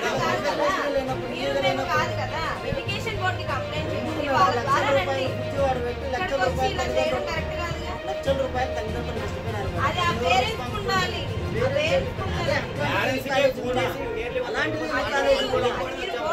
కాదు కదా, మీరు మేము కాదు కదా. ఎడ్యుకేషన్ బోర్డుకి కంప్లైంట్ చేసి వాళ్ళ ద్వారా రండి. ఇక్కడికి వచ్చి ఇలా చేయడం కరెక్ట్ కాదుగా. అది ఆ పేరెంట్స్ ఉండాలి, మీరు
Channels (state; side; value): identical; both; correlation 1.00